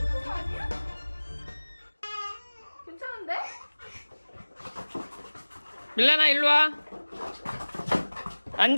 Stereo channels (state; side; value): inverted; both; correlation -1.00